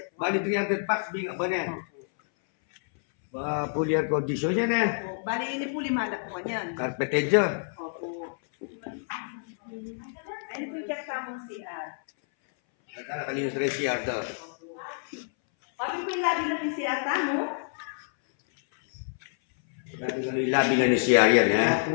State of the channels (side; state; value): right; silent; 59 dB below the other